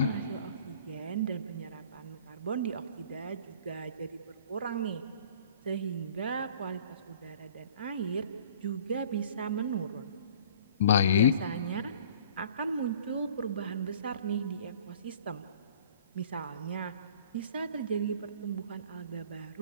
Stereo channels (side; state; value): both; inverted; correlation -0.49